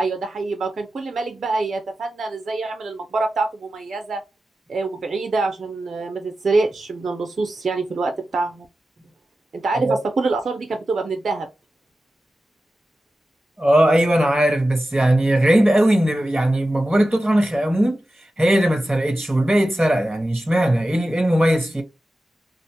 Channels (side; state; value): both; normal; correlation 0.93